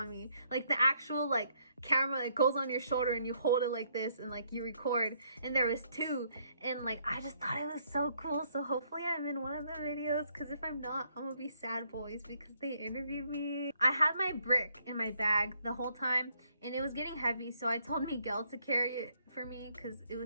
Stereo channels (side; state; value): both; inverted; correlation -0.70